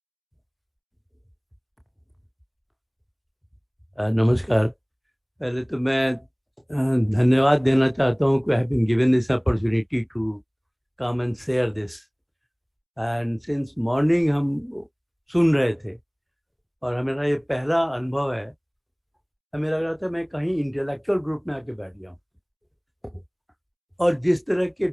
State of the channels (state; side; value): identical; both; correlation 1.00